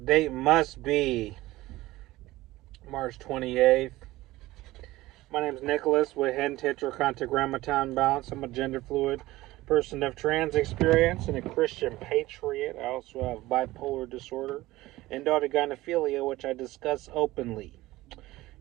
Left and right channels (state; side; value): quieter; left; 17.9 dB